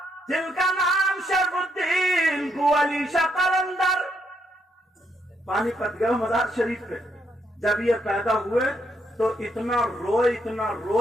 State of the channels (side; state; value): both; normal; correlation 0.76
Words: جن کا نام شرف الدین بو علی شاہ قلندر، پانی پت گئے مزار شریف پہ۔ جب یہ پیدا ہوئے تو اتنا روئے